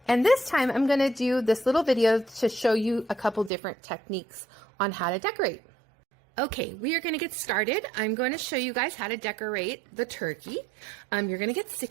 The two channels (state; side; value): drops out; left; at 3.5 s